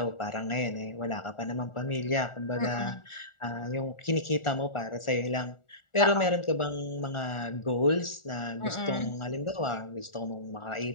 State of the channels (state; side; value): late; right; 1.4 ms